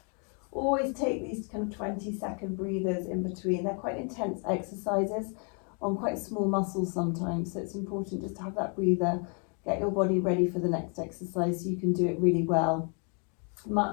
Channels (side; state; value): right; quieter; 39.0 dB